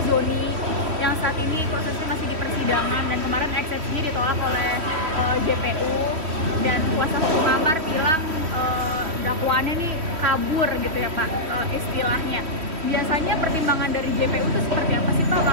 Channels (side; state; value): left; late; 3.1 ms